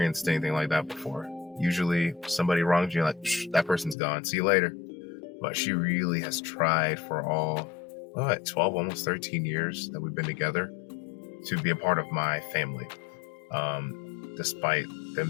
anything like that before. Usually somebody wrongs you, like, that person's gone, see you later. But she really has tried for all 12, almost 13 years that we've been together to be a part of my family, despite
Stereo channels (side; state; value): right; drops out; at 4.0 s